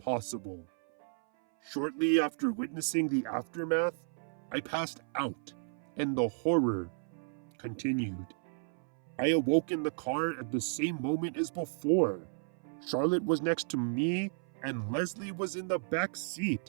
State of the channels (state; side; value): silent; left; 55 dB below the other